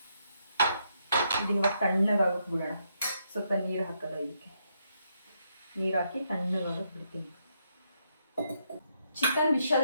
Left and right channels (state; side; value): inverted; both; correlation -0.78